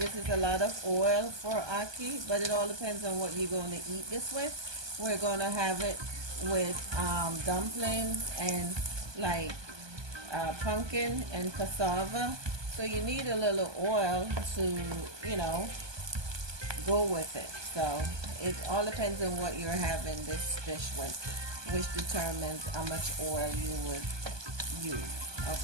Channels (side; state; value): left; late; 1.2 ms